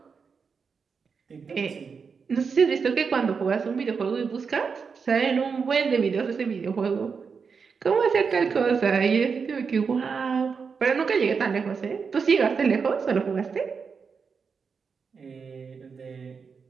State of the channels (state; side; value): quieter; left; 5.6 dB